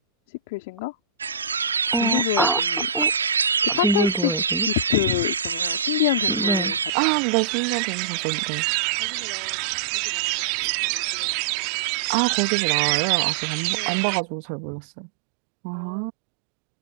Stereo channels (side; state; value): left; drops out; at 6.9 s